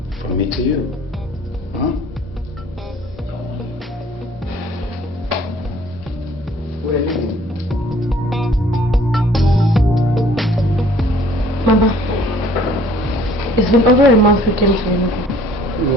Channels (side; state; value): both; normal; correlation 0.56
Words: from me to you. Huh? Where are you? Mama, it's been over a month we came to Enugu.